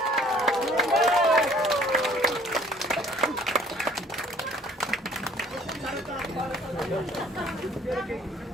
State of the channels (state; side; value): normal; both; correlation 0.55